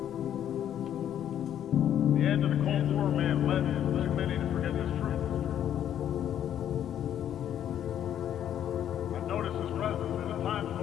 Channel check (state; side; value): quieter; right; 10.3 dB